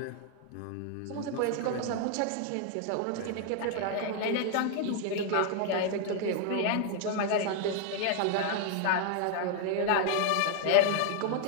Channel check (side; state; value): both; different; correlation 0.00